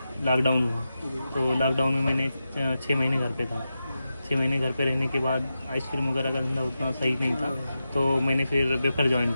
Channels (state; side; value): inverted; both; correlation -0.90